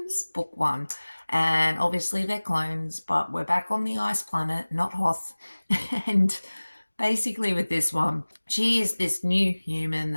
book 1. And obviously they're clones, but we're back on the Ice Planet, not Hoth. And basically with this one, she is this new human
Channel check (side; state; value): both; inverted; correlation -1.00